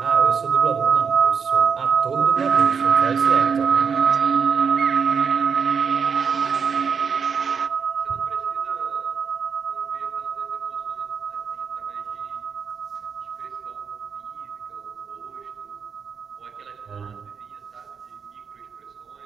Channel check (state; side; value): quieter; left; 6.1 dB